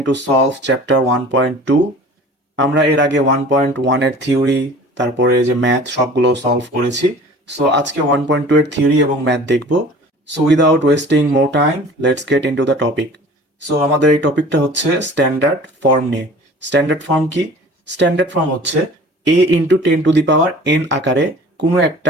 to solve chapter 1.2. আমরা এর আগে 1.1 এর theory তারপরে যে ম্যাথ সবগুলো সলভ করেছি। সো আজকে 1.2 এর থিওরি এবং ম্যাথ দেখব। So without wasting more time let's get into the topic. So আমাদের এই টপিকটা হচ্ছে স্ট্যান্ডার্ড ফর্ম নিয়ে। স্ট্যান্ডার্ড ফর্ম কি? স্ট্যান্ডার্ড ফর্ম হচ্ছে a ইন্টু 10⁻n আকারে কোনো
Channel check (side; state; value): both; normal; correlation 0.44